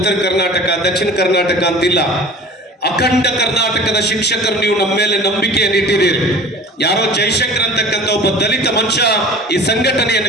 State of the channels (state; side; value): normal; both; correlation 0.41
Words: ಕರ್ನಾಟಕ, ದಕ್ಷಿಣ ಕರ್ನಾಟಕ ಅಂತಿಲ್ಲ, ಅಖಂಡ ಕರ್ನಾಟಕದ ಶಿಕ್ಷಕರು ನೀವು ನಮ್ಮ ಮೇಲೆ ನಂಬಿಕೆಯನ್ನು ಇಟ್ಟಿದ್ದೀರಿ. ಯಾರೋ ಜೈಶಂಕರ್ ಅಂತಕ್ಕಂಥ ಒಬ್ಬ ದಲಿತ ಮನುಷ್ಯ ಈ